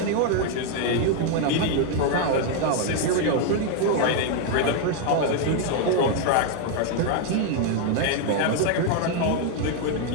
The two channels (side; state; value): both; different; correlation 0.00